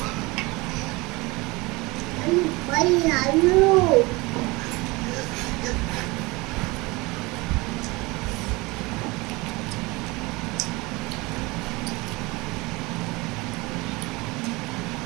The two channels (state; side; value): quieter; left; 23.7 dB